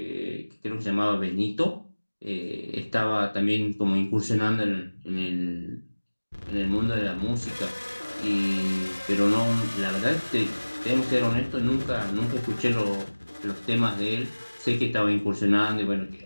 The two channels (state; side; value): inverted; both; correlation -1.00